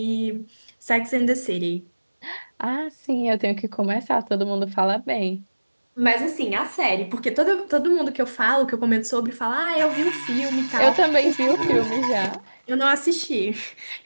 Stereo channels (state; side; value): inverted; both; correlation -1.00